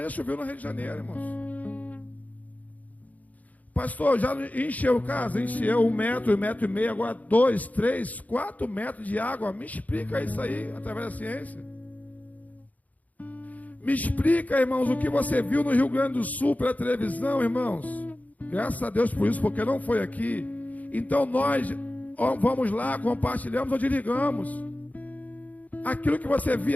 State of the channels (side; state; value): right; late; 0.076 ms